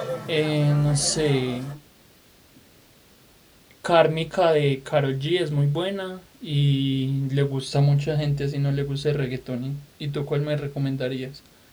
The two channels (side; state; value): both; identical; correlation 1.00